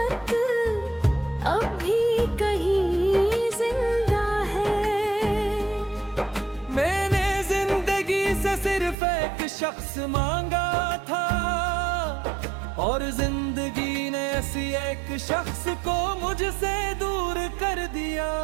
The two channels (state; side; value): drops out; left; at 9.0 s